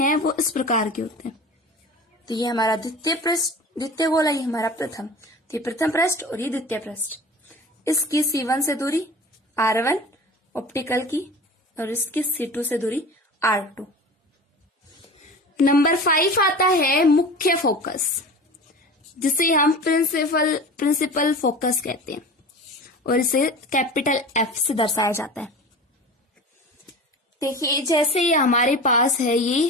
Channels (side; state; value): both; normal; correlation 0.35